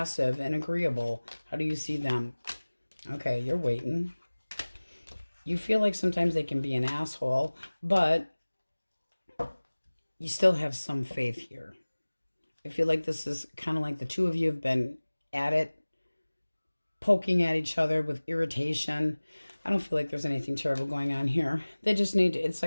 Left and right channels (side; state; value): both; inverted; correlation -1.00